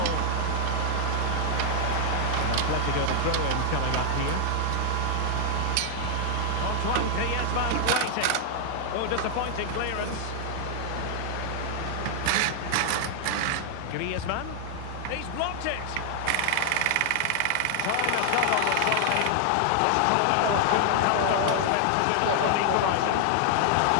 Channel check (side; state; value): both; different; correlation 0.00